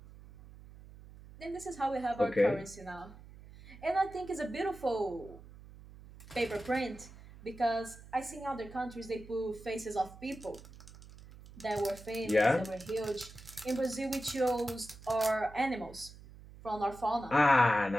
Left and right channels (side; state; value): right; noise; hum, 18 dB below the sound